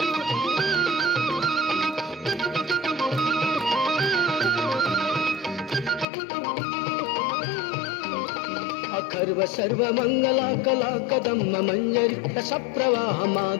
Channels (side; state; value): right; drops out; at 6.1 s